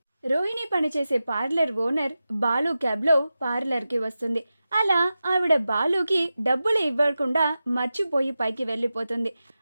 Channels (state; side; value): inverted; both; correlation -0.93